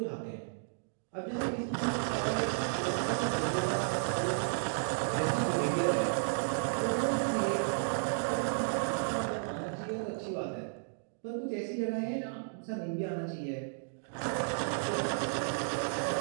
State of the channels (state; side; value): silent; left; digital silence